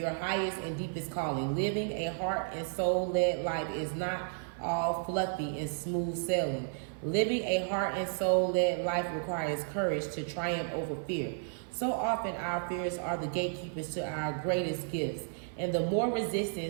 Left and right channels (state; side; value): silent; left; 56 dB below the other